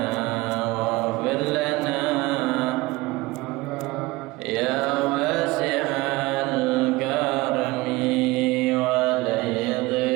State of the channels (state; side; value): quieter; left; 20.9 dB